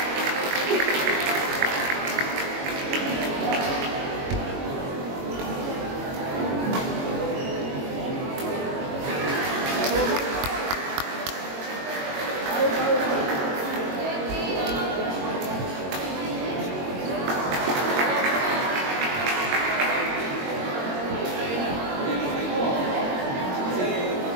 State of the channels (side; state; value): left; late; 22 ms